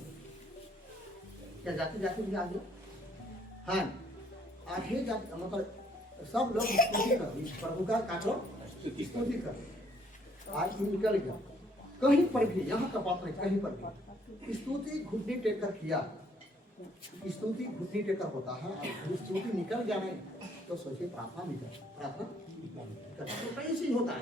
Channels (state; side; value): normal; both; correlation 0.65